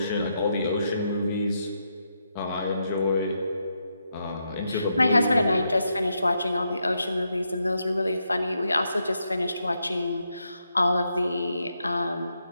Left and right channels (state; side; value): inverted; both; correlation -0.82